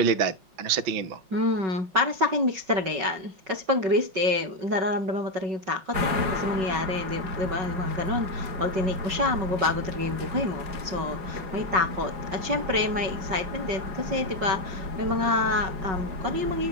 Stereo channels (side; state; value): left; late; 5.3 ms